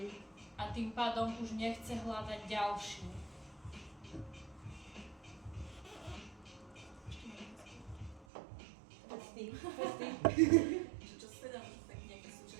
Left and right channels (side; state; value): left; drops out; at 8.2 s